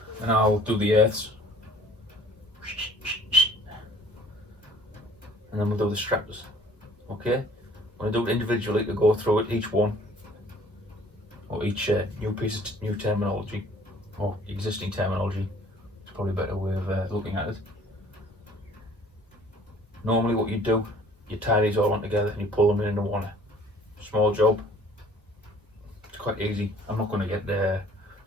and I'll do the earths, and then we'll do the straps. Okay, when I do it individually to go through it, each one, or each new piece of new terminology, or existing terminology, it's probably a better way of looking at it. Normally what you do, you tie these all on together and you pull them into one. Small job, it's quite easy. I'm not going to get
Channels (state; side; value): normal; both; correlation 0.54